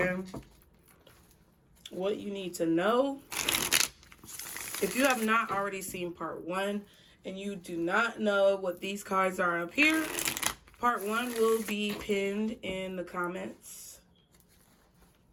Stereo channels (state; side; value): identical; both; correlation 1.00